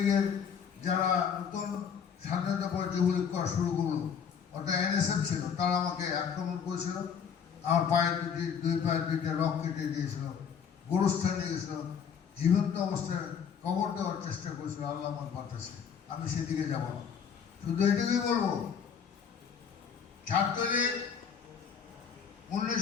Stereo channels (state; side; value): quieter; right; 7.1 dB